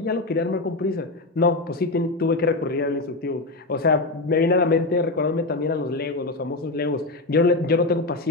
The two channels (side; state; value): right; quieter; 3.0 dB